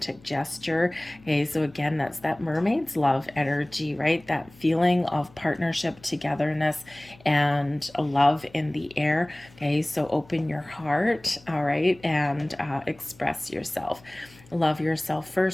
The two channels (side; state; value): left; noise; hum, 25 dB below the sound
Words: gesture. Okay, so again, that's that mermaid's love energy, right? That feeling of partnership, togetherness, and a love in the air. Okay, so open your heart, all right, and express yourself. Love yourself